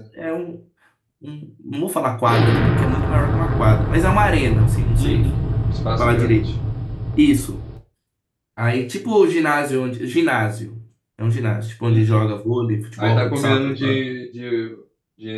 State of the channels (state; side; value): identical; both; correlation 1.00